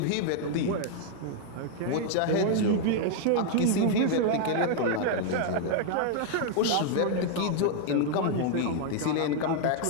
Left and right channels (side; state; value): both; different; correlation 0.00